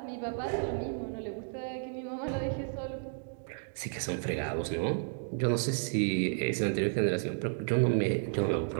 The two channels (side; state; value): left; silent; digital silence